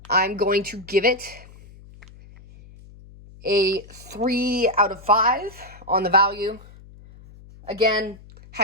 going to give it a 3 out of 5 on the value. Again,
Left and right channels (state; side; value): noise; left; hum, 21 dB below the sound